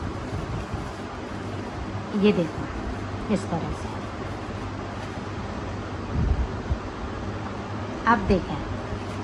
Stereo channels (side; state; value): both; identical; correlation 1.00